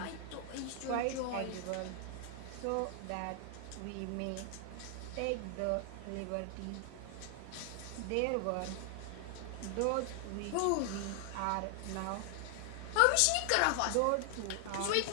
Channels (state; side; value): different; both; correlation 0.00